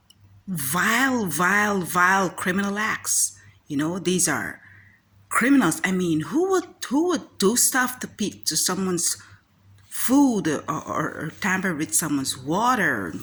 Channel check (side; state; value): both; identical; correlation 1.00